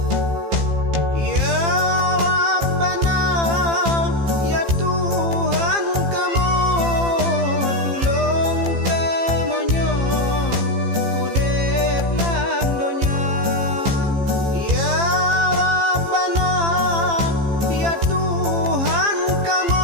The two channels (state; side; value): late; left; 15 ms